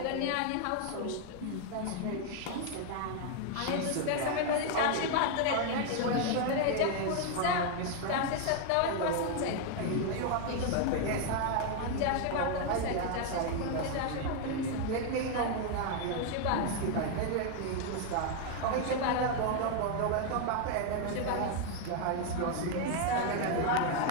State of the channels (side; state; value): both; different; correlation 0.00